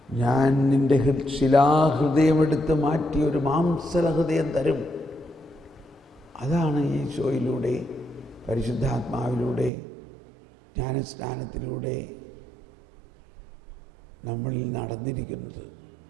ഞാൻ നിൻ്റെ ശിലാഹൃദയമെടുത്ത് മാറ്റി ഒരു മാംസലഹൃദയം തരും. അതാണ് ഈശോയിലൂടെ, പരിശുദ്ധാത്മാവിലൂടെ, ജ്ഞാനസ്നാനത്തിലൂടെ നമ്മളിൽ നടന്നിരിക്കുന്നത്.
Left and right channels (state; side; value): drops out; left; at 9.7 s